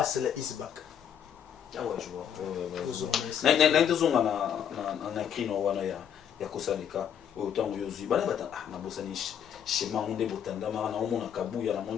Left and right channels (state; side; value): quieter; right; 8.8 dB